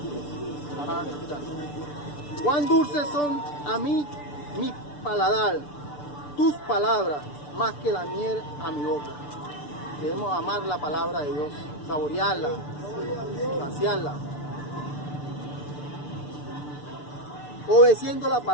Ajá, cuán dulces son a mí mi paladar, tus palabras, más que la miel a mi boca. Debemos amar la palabra de Dios, saborearla, saciarla. Obedeciendo la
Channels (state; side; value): late; right; 6.8 ms